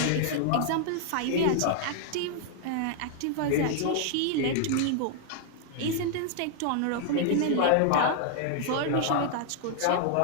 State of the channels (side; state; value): both; different; correlation 0.00